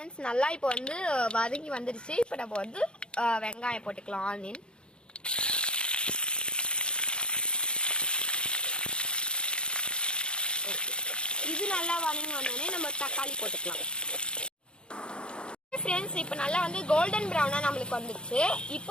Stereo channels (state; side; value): late; right; 0.053 ms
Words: நல்லா இப்போ வந்து வதங்கி வந்துடுச்சு. இப்போ நம்ம வந்து வெங்காயம் போட்டுக்கலாம். ஆனியன் இது நல்லா வதங்கி வந்தோடனே நம்ம தக்காளி போட்டுக்கலாம். ஃப்ரெண்ட்ஸ், இப்போ நல்லா வந்து கோல்டன் ப்ரௌனா நம்மளுக்கு வந்துடுச்சு.